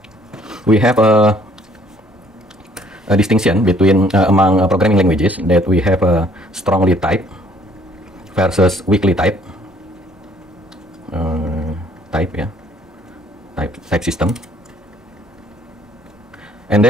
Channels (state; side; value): normal; both; correlation 0.60